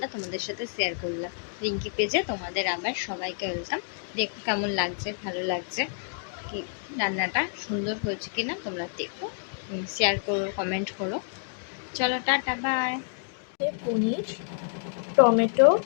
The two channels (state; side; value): silent; right; digital silence